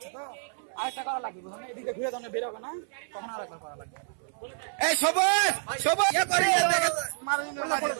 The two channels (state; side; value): silent; left; 59 dB below the other